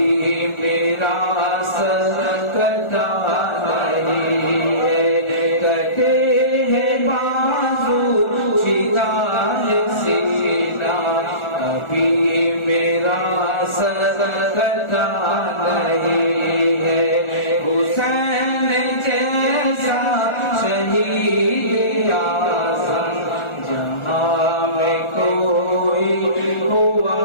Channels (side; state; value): right; late; 1.4 ms